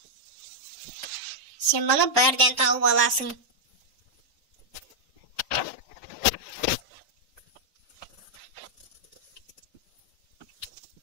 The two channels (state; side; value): normal; both; correlation -0.03